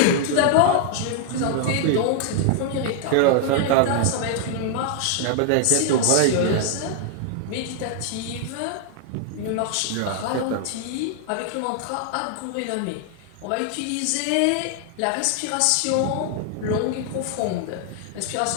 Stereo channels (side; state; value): both; different; correlation 0.00